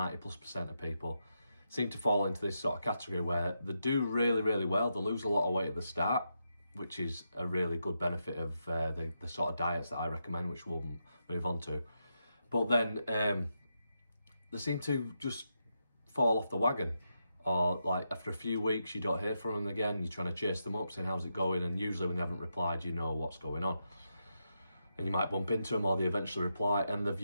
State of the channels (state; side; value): inverted; both; correlation -0.84